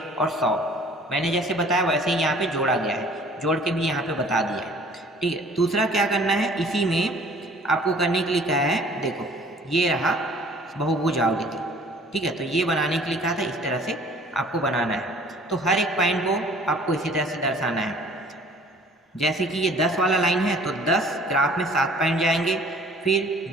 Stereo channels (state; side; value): normal; both; correlation 0.52